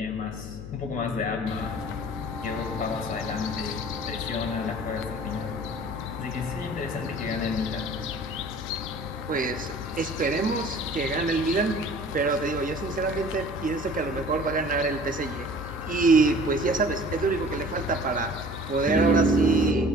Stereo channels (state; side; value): noise; left; hum, 10 dB below the sound